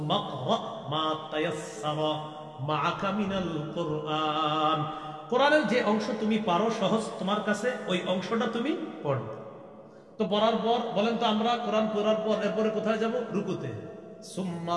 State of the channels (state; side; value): identical; both; correlation 1.00